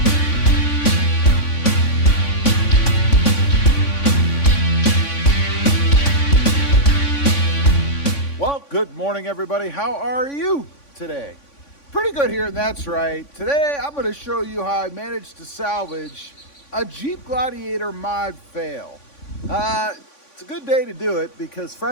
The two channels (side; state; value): right; late; 3.5 ms